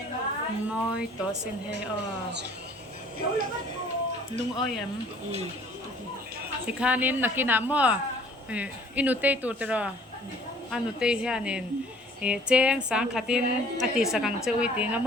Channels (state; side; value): normal; both; correlation 0.54